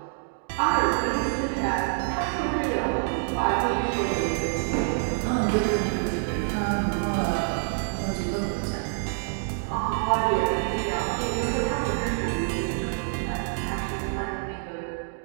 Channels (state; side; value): silent; left; digital silence